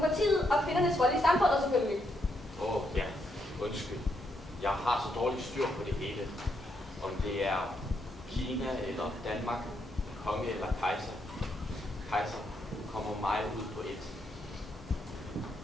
og kvindernes rolle i samfundet selvfølgelig. Ja, undskyld. Jeg har så dårligt styr på det hele. Om det er Kina eller Danmark, konge eller kejser. Kejser kommer mig ud på et.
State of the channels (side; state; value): both; normal; correlation 0.78